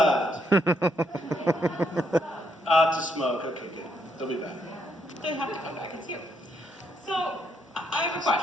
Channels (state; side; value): normal; both; correlation 0.75